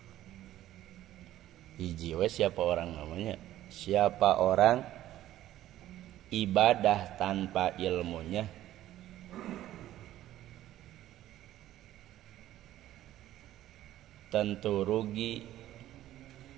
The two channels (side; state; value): left; quieter; 13.6 dB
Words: hiji we siapa orang namanya, siapa orang ibadah tanpa ilmunya tentu rugi